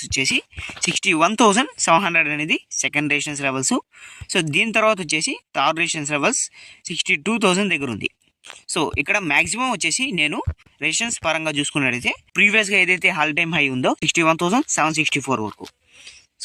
వచ్చేసి 61,700 అనేది సెకండ్ రెసిస్టెన్స్ లెవెల్స్. సో దీని తర్వాత వచ్చేసి థర్డ్ రెసిస్టెన్స్ లెవెల్స్ 62,000 దగ్గర ఉంది. సో ఇక్కడ మ్యాక్సిమం వచ్చేసి నేను రెసిస్టెన్స్ పరంగా చూసుకున్నట్టయితే ప్రీవియస్గా ఏదైతే హాల్ టైమ్ హై ఉందో 61,764 వరకు.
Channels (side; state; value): both; identical; correlation 1.00